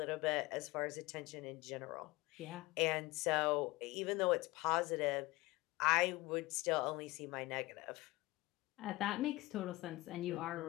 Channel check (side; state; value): right; quieter; 20.9 dB